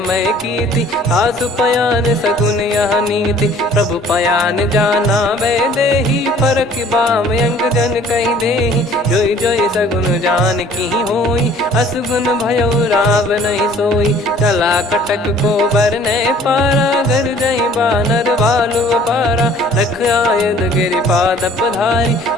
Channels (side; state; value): both; normal; correlation 0.53